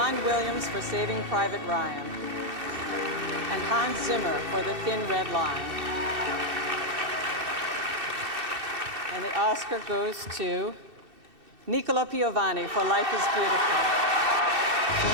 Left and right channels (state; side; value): late; left; 2.6 ms